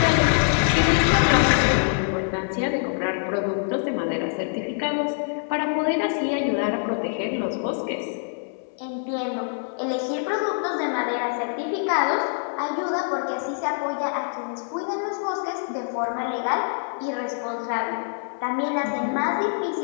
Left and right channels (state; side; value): silent; right; 62 dB below the other